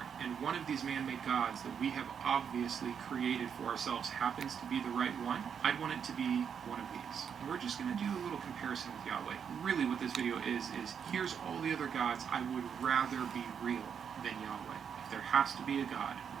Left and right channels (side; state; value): left; quieter; 7.4 dB